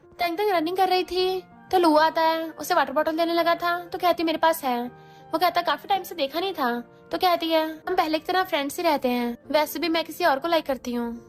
तंग तंग रनिंग कर रही थी तो लू आता है, उसे वाटर बॉटल देने लगा था तो कहती मेरे पास है। वो कहता काफी टाइम से देखा नहीं था। तो कहती है हम पहले की तरह फ्रेंड्स ही रहते हैं, वैसे भी मैं किसी और को लाइक करती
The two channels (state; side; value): identical; both; correlation 1.00